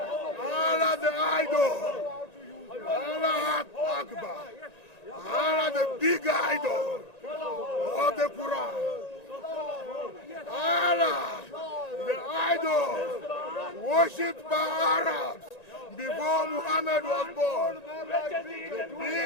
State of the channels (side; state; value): right; late; 1.9 ms